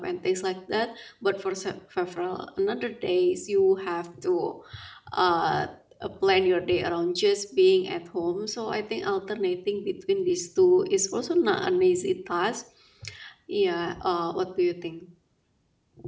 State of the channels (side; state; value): both; identical; correlation 1.00